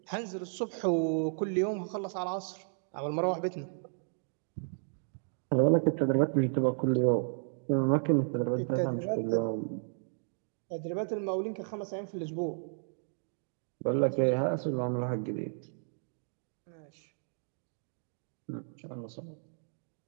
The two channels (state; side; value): silent; left; digital silence